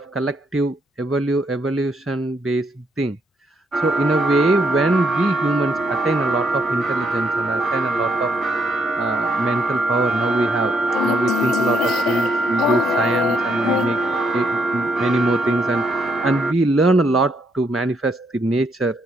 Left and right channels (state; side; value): normal; both; correlation 0.73